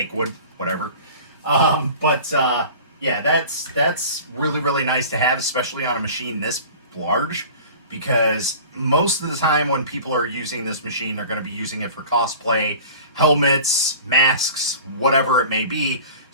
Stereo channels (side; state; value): both; inverted; correlation -0.41